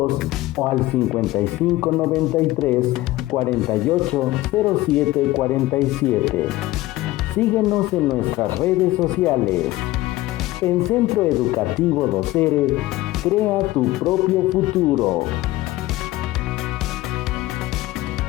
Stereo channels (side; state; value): right; quieter; 17.5 dB